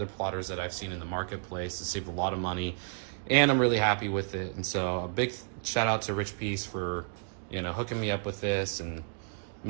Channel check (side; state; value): left; silent; digital silence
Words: plotters that I've seen in the marketplace. To save a lot of money, and I'm really happy with it. And so a big shout out to Richpeace for, you know, hooking me up with this and